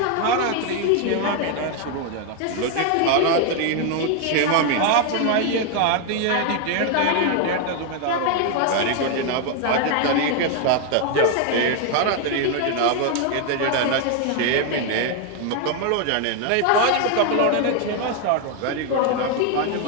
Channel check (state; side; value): different; both; correlation 0.01